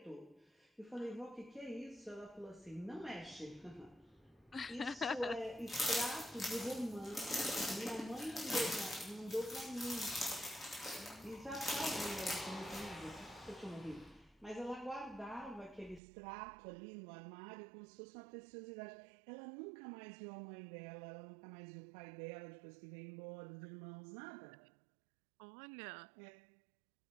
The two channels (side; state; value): left; drops out; at 16.0 s